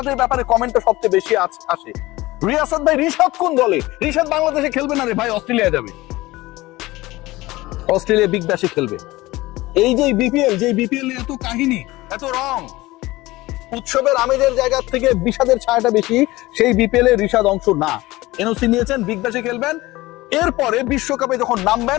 ব্যাপারে কমেন্টটা সবচেয়ে বেশি আসে। রিয়াসাদ ভাই, রিশাদ কোন দলে? রিশাদ বাংলাদেশে খেলবে না রে ভাই, অস্ট্রেলিয়া যাবে, অস্ট্রেলিয়া বিগ ব্যাশে খেলবে। এই যে বিপিএল এত কাহিনী, এত রং, উৎসবের আমেজের জায়গা থেকে বিষাদের ছায়াটা বেশি, সেই বিপিএল এর রিশাদ অংশ না। এনওসি নিয়েছেন, বিগ ব্যাশে খেলবেন, এরপরে বিশ্বকাপে যখন নামবেন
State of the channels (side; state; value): right; quieter; 19.3 dB